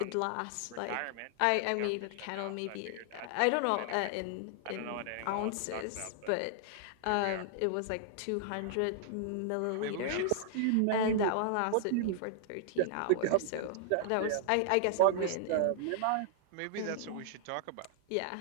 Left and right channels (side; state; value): both; different; correlation -0.01